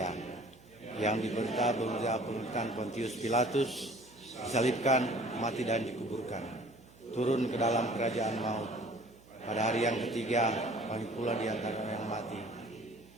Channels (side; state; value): right; noise; hum, 24 dB below the sound